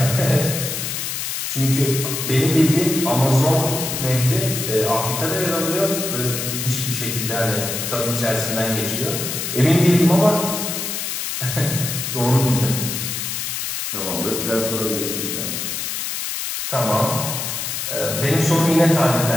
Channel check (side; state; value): left; noise; hiss, 3 dB below the sound